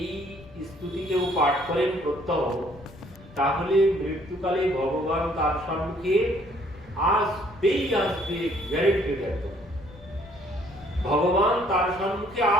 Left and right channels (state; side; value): noise; left; rumble, 21 dB below the sound